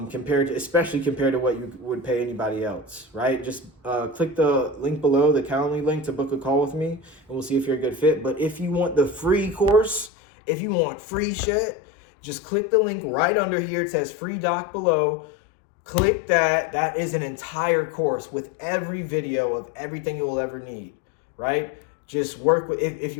compared to what you would pay anybody else, right? Just click the link below, the Calendly link, to book a call with me, and we'll see if you're a good fit. But if you want the free course, if you want free shit, just click the link right under here. It says free doc below. Click that. That is an entire course with every video of everything you will ever need, right? Just work with, if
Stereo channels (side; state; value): right; drops out; at 10.1 s